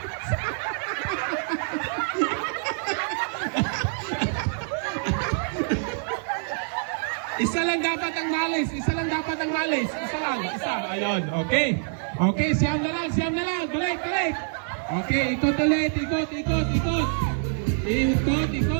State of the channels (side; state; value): left; silent; 57 dB below the other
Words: Isa lang dapat ang malis. Isa lang dapat ang malis. Isa lang. Isa. Ayun. Okay. Okay. Siyam na lang. Siyam na lang. Balik. Balik. Okay. Ikot ulit. Ikot. Ikot. Ikot. Ikot.